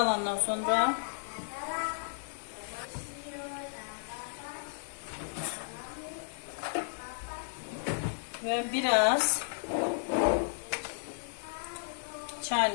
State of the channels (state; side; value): silent; right; digital silence